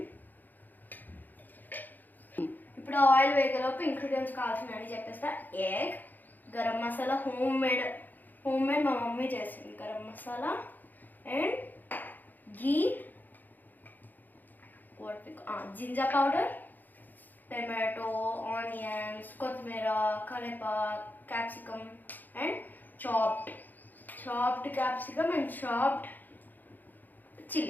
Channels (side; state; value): right; late; 0.086 ms